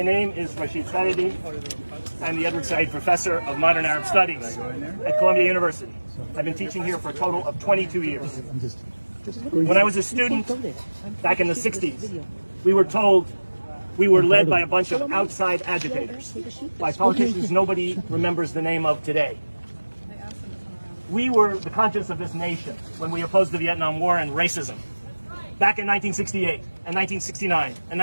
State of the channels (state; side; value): inverted; both; correlation -1.00